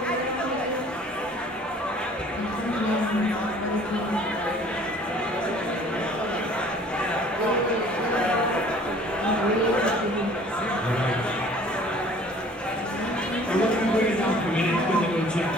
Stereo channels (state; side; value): normal; both; correlation 0.52